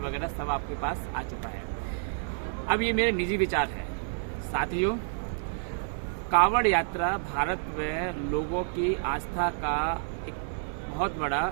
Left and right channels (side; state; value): left; silent; digital silence